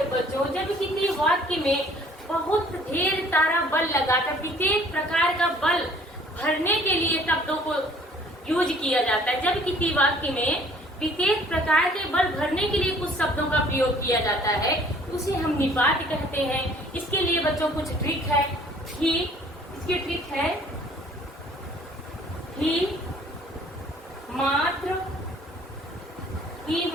बच्चों, जब किसी वाक्य में बहुत ढेर सारा बल लगाकर विशेष प्रकार का बल भरने के लिए शब्दों को यूज किया जाता है। जब किसी वाक्य में विशेष प्रकार के बल भरने के लिए कुछ शब्दों का प्रयोग किया जाता है, उसे हम निपात कहते हैं। इसके लिए बच्चों कुछ ट्रिक है। इसकी ट्रिक है ही मात्र,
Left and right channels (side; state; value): both; normal; correlation 0.55